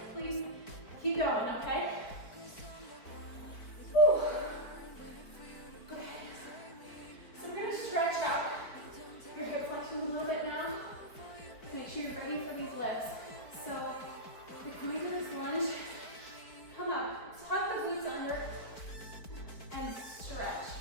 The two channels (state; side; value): late; right; 4.5 ms